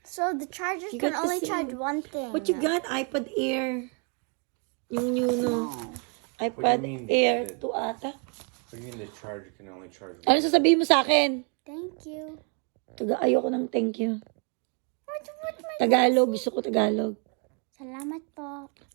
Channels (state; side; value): quieter; left; 37.6 dB